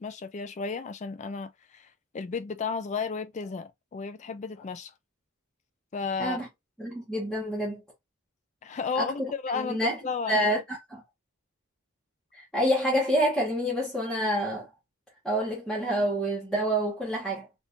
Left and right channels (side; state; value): both; normal; correlation 0.40